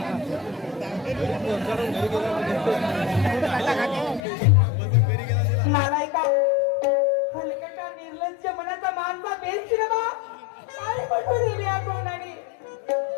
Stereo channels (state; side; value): drops out; right; at 4.2 s